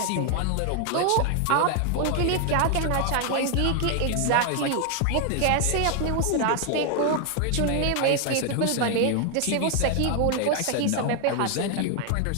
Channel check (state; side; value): different; both; correlation 0.00